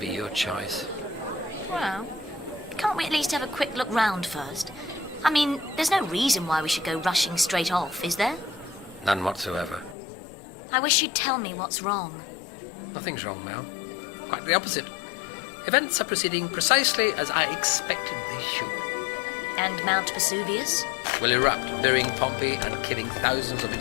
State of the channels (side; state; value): right; drops out; at 10.0 s